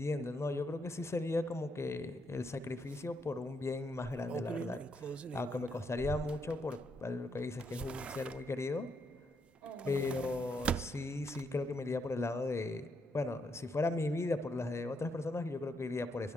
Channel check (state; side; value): normal; both; correlation 0.77